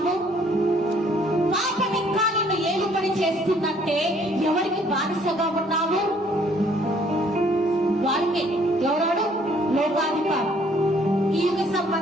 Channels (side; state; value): both; normal; correlation 0.62